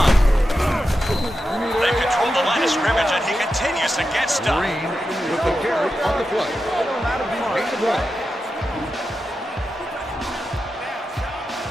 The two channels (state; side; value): normal; both; correlation 0.90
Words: They control the line of scrimmage, and he continues to get stuck. Green with the carry on the play. 8-1.